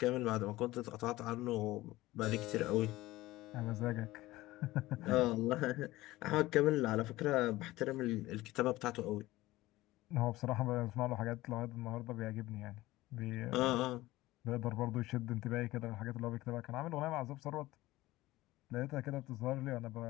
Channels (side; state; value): right; quieter; 17.8 dB